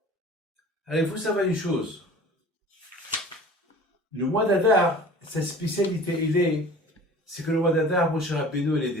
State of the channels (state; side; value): normal; both; correlation 0.43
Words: Alors il faut savoir une chose. Le mois d'Adar, sa spécialité, c'est que le mois d'Adar, Moshe Rabbeinu, il est